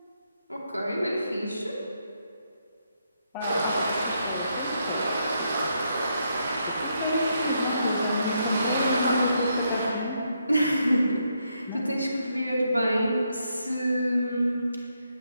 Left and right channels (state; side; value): inverted; both; correlation -0.78